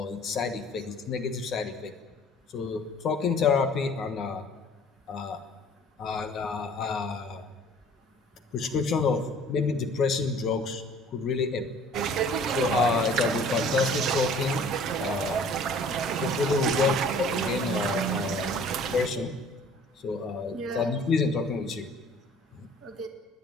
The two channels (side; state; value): both; normal; correlation 0.51